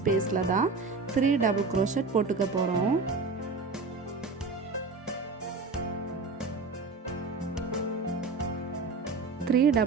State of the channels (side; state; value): left; quieter; 4.1 dB